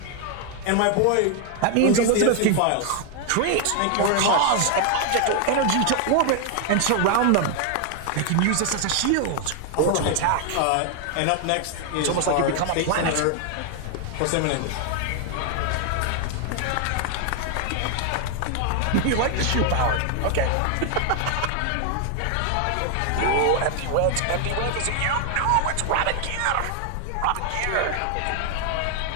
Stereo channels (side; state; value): both; different; correlation 0.00